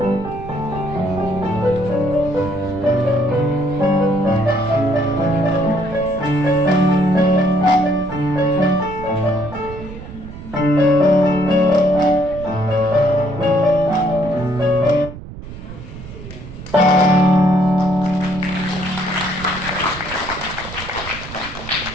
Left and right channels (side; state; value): right; noise; rumble, 13 dB below the sound